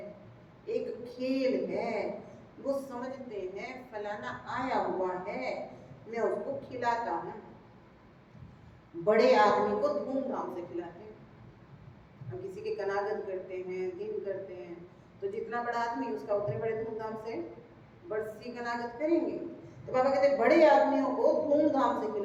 एक खेल है। वो समझते हैं फलाना आया हुआ है, मैं उसको खिलाता हूँ। बड़े आदमी को धूमधाम से खिलाते हैं। हम किसी के कनागत करते हैं, दिन करते हैं, तो जितना बड़ा आदमी उसका उतने बड़े धूमधाम से बरसी कनागत करेंगे। तो बाबा कहते हैं बड़े आदमियों को धूमधाम से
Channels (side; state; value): both; identical; correlation 1.00